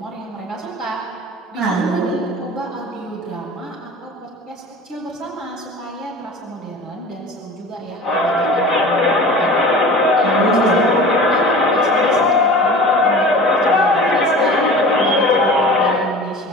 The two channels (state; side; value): normal; both; correlation 0.39